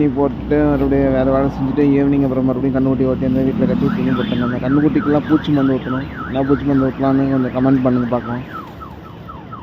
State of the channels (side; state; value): both; identical; correlation 1.00